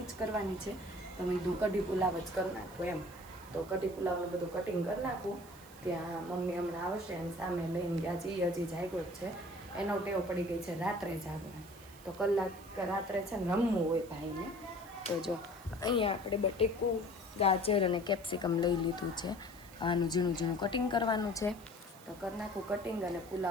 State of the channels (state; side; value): noise; right; hiss, 21 dB below the sound